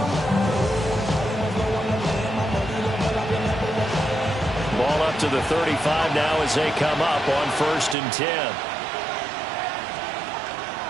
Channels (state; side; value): drops out; left; at 8.0 s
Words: Ball up to the 35 now as they come up on 1st and 10.